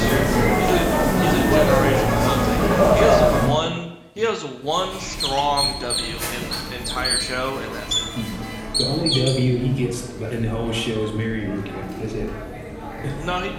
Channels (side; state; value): both; identical; correlation 1.00